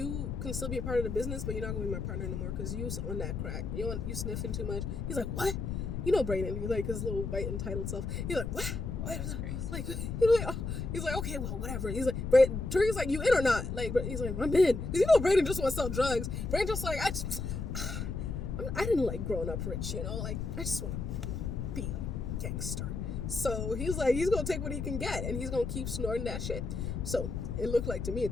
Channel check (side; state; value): left; noise; rumble, 3 dB below the sound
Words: can still be a part of the business, but you're not gonna be my partner no more because you on that crack. You sniffing too much. He's like, what? You know Brayden. He's like his little white entitled self. He's like, what? Wow, that's crazy. Like he's like, okay, well, whatever. He's like, Tariq's like, you in or not? Like, he's like, I'm in. Because you know Brayden just want to sell drugs. Brayden just like, I didn't like growing up rich, like I just want to be like gangster. So he's like, he's gonna take what he can get and he's gonna keep snorting that shit. So it looked like to me, it